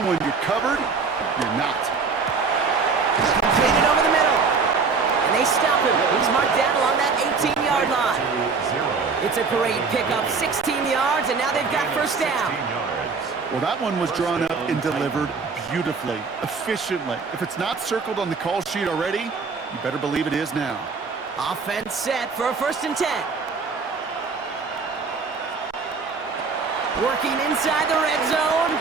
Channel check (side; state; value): left; quieter; 4.8 dB